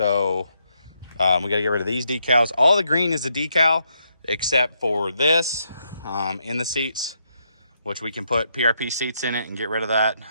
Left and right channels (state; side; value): inverted; both; correlation -0.78